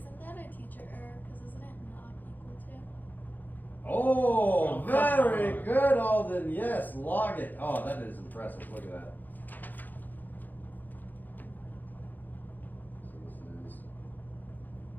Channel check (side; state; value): right; late; 0.085 ms